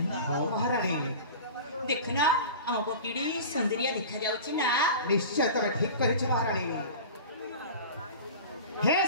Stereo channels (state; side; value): inverted; both; correlation -0.35